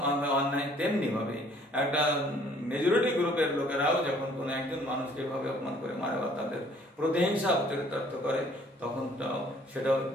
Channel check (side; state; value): both; normal; correlation 0.58